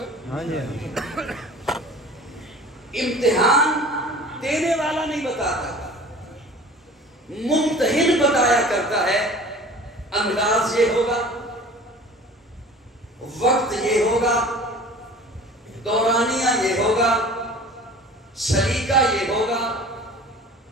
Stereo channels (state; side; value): normal; both; correlation 0.43